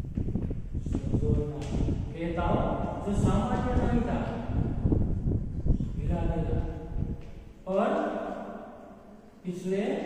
जो सामान्य नहीं था, हिला देना। और पिछले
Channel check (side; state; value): both; identical; correlation 1.00